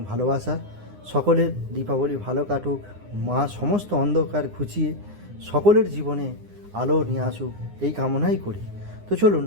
ভালোবাসা। সকলের দীপাবলি ভালো কাটুক, মা সমস্ত অন্ধকার ঘুচিয়ে সকলের জীবনে আলো নিয়ে আসুক, এই কামনাই করি। তো চলুন,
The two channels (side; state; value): left; late; 9.8 ms